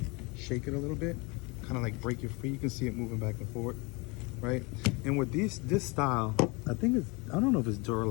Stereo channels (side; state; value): right; quieter; 27.7 dB